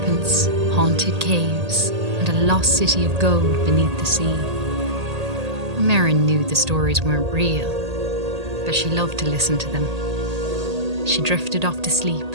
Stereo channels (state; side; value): late; left; 1.8 ms